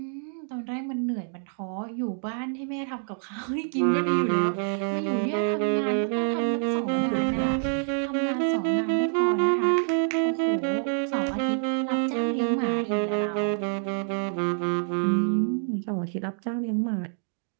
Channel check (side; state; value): left; silent; 58 dB below the other